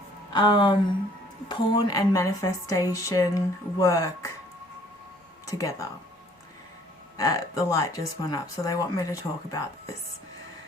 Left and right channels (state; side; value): normal; both; correlation 0.59